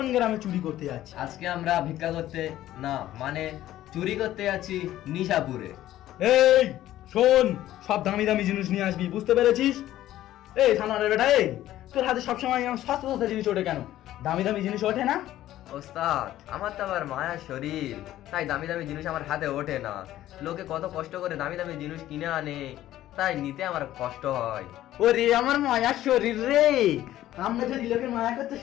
গ্রামে চুরি করতে যাচ্ছি? আজকে আমরা ভিক্ষা করতে না, মানে চুরি করতে যাচ্ছি নিশাপুরে। এই শোন, সব দামি দামি জিনিস নিয়ে আসবি, বুঝতে পেরেছিস? এই থানার বেটা, এই তোর হাতে সবসময় সস্তা সস্তা জিনিস ওঠে কেন? দামি দামি জিনিস ওঠে না? ওস্তাদ, আমার তো আবার মায়ার শরীর, তাই দামি দামি জিনিস আমার হাতে ওঠে না। লোকে কত কষ্ট করে দামি দামি জিনিস কিনে আনে, তাই নিতে আমার কষ্ট হয়। ওরে আমার মায়ার শরীর রে, আমরা যদি লোকের মায়া করতে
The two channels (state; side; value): quieter; right; 13.7 dB